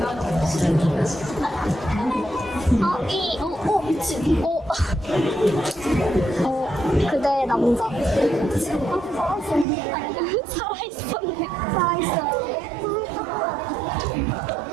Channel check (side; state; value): left; drops out; at 9.7 s